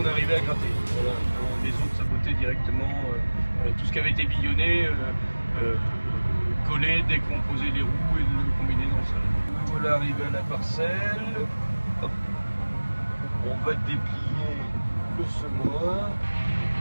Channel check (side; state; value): both; inverted; correlation -1.00